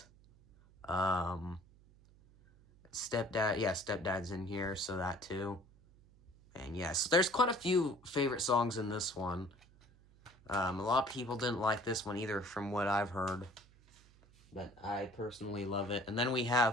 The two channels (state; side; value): noise; right; hum, 26 dB below the sound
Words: Stepdad. Yeah, Stepdad's in here, so that too. And yes, there's quite a few favorite songs in this one. A lot of people didn't like this one either, from what I've heard. But I personally love it. And then we